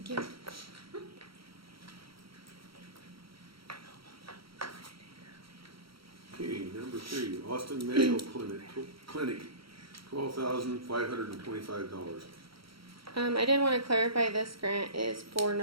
you. Okay, number 3, Austin Mayo Clinic, $12,525. I did want to clarify this grant is for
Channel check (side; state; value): left; late; 0.75 ms